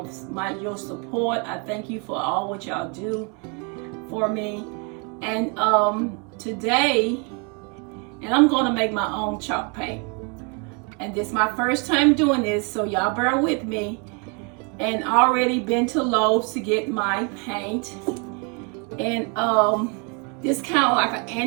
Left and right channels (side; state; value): left; quieter; 34.7 dB